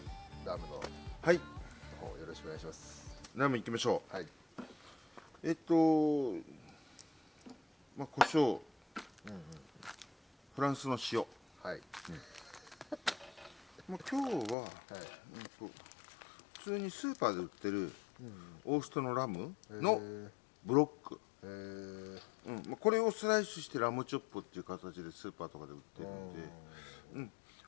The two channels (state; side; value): drops out; right; at 14.6 s